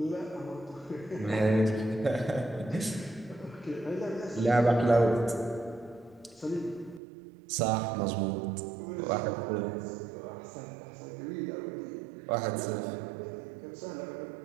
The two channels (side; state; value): left; drops out; at 7.0 s